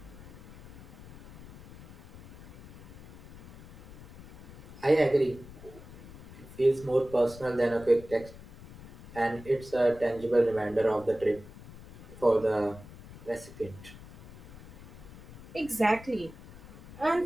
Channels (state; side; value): noise; left; rumble, 16 dB below the sound